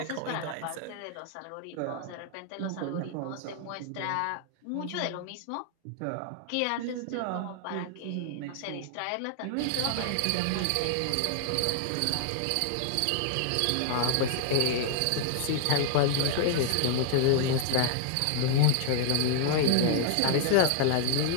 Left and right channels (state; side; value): different; both; correlation 0.00